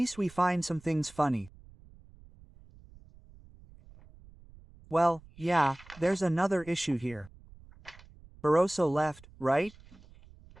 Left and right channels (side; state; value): right; noise; rumble, 23 dB below the sound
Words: we find some things funny. Well, yeah, there's another issue here. Barroso left, right?